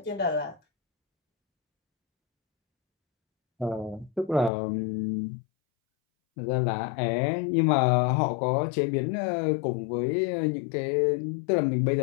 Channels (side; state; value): right; drops out; at 4.5 s